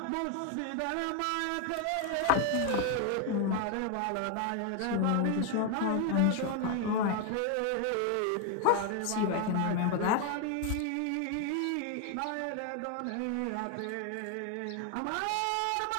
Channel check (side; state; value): both; different; correlation 0.01